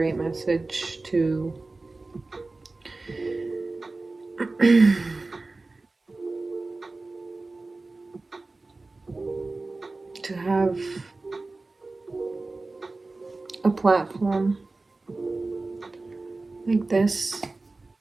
message to to have a platform like this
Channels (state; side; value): quieter; left; 3.4 dB